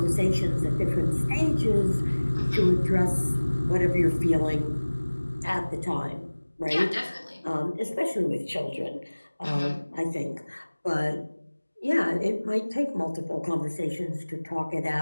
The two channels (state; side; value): inverted; both; correlation -1.00